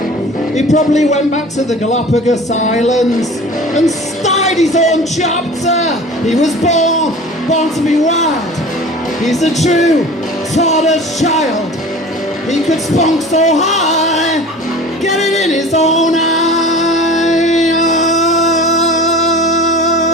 He probably went back to the Galapagos Islands and started his own chapter. He was born to be wild. He's a true tortoise child. He could spunk so high, get it in his own eye.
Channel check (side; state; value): both; normal; correlation 0.40